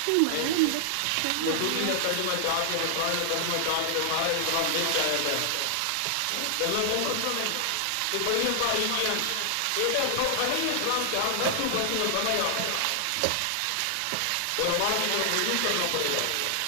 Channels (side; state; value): both; different; correlation 0.00